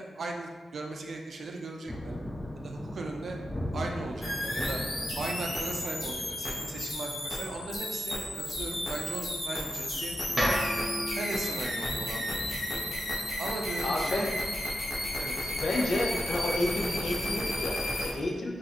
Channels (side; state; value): both; normal; correlation 0.88